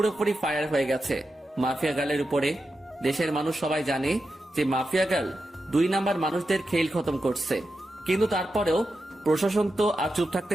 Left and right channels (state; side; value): normal; both; correlation 0.89